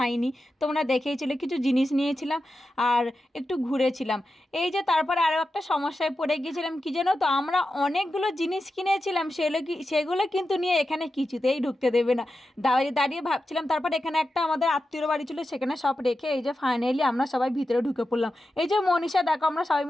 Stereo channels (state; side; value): normal; both; correlation 0.91